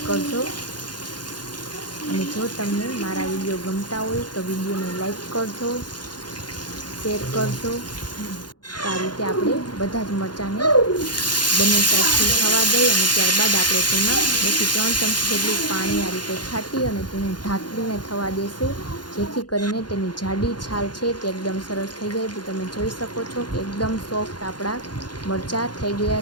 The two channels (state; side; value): late; right; 0.70 ms